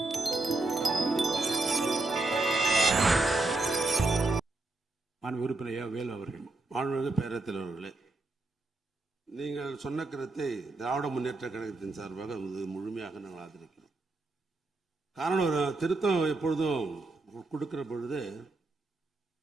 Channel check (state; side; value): quieter; left; 3.1 dB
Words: உறுப்பினர் வேலு அவர்கள், மாண்புமிகு பேரவைத் தலைவர்களே, நீங்கள் சொன்ன கருத்தை திராவிட முன்னேற்ற கழகத்தின் சார்பாக முழுமையாக நாங்கள் ஆதரிக்கிறோம். காரணம், ஒரு திருத்தம் எப்பொழுதும் கொடுக்கிற பொழுது